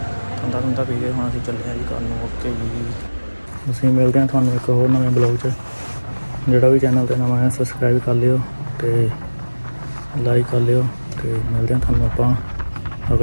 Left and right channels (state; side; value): inverted; both; correlation -1.00